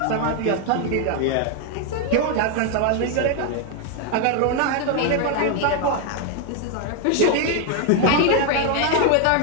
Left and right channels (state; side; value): different; both; correlation 0.01